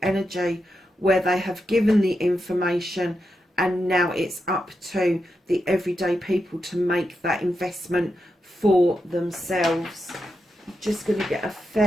energy, where they have given the information and now it's up to the everyday people to make that investment for themselves. I'm just going to get a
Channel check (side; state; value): both; normal; correlation 0.86